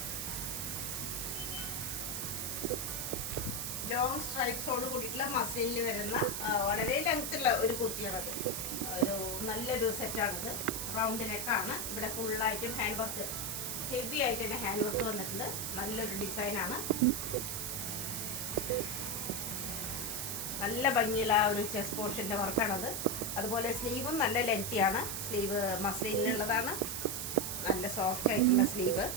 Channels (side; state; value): right; noise; hiss, 3 dB below the sound